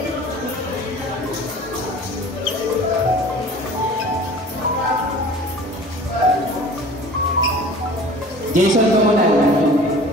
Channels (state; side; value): normal; both; correlation 0.43